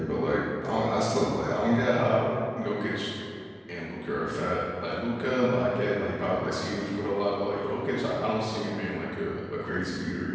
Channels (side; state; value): both; identical; correlation 1.00